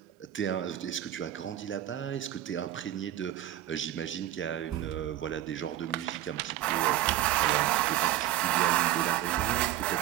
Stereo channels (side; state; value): left; quieter; 13.2 dB